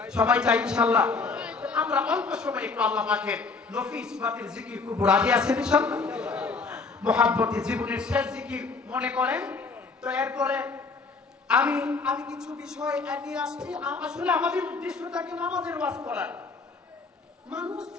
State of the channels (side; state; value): right; quieter; 4.3 dB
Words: সবাই চাই ইনশাআল্লাহ। আমরা অল্প সময় একটু আল্লাহ পাকের নফিস বাতিল জিকির করব। রাজি আছেন ইনশাআল্লাহ? মুহাব্বতে জীবনের শেষ জিকির মনে করেন তো। এরপরে আমি আমি কিছু বিষয় নিয়ে আসছি। আসলে আমাদের উদ্দেশ্য থাকে নামাজের ওয়াজ করার। মানুষ